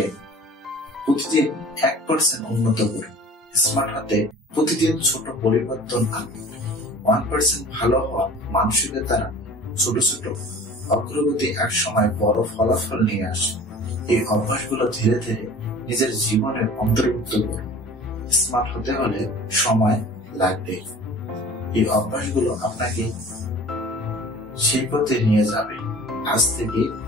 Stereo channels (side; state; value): both; normal; correlation 0.44